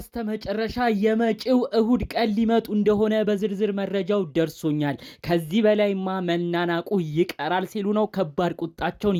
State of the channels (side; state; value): both; identical; correlation 1.00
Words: የመጪው እሁድ ቀን ሊመጡ እንደሆነ በዝርዝር መረጃው ደርሶኛል። ከዚህ በላይማ መናናቁ ይቀራል ሲሉ ነው ከባድ ቁጣቸውን